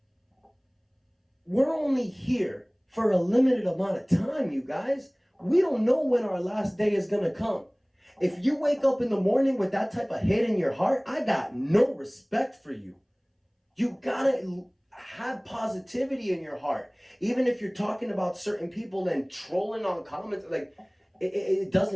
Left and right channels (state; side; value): identical; both; correlation 1.00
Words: We're only here for a limited amount of time, you guys. We don't know when our last day is going to come. If you wake up in the morning with that type of hate in your heart, I got no respect for you. You gotta have positivity in your heart. Even if you're talking about certain people and trolling on comments, like it